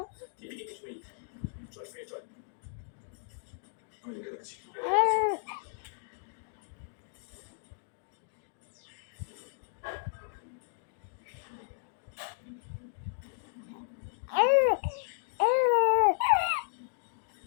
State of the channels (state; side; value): silent; right; digital silence